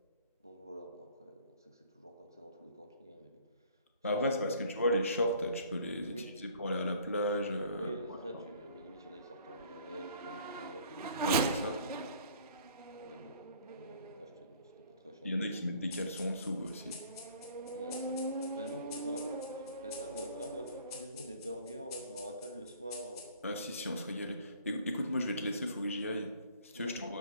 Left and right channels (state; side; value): inverted; both; correlation -0.54